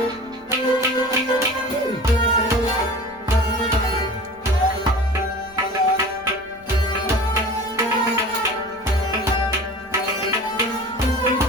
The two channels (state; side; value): noise; left; rumble, 28 dB below the sound